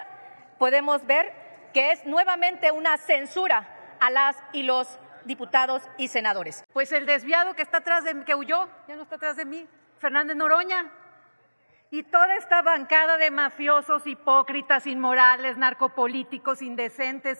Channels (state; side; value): inverted; both; correlation -1.00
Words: podemos ver que es nuevamente una censura a las y los diputados y senadores. Pues el desviado que está atrás de mí, que huyó, ya no está atrás de mí, Fernández Noroña. Y toda esta bancada de mafiosos, hipócritas, inmorales, narcopolíticos,